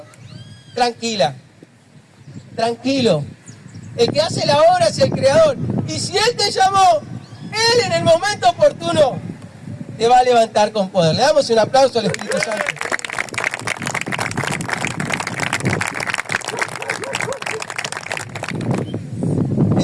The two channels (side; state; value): both; identical; correlation 1.00